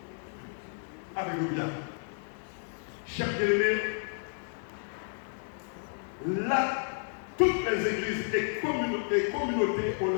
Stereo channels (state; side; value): silent; right; digital silence